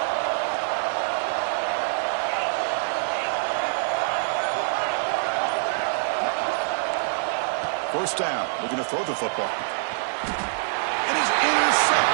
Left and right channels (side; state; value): left; silent; 58 dB below the other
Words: First down, looking to throw the football. And is